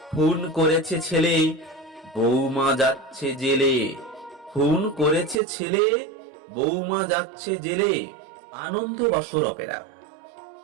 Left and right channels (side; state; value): left; drops out; at 5.4 s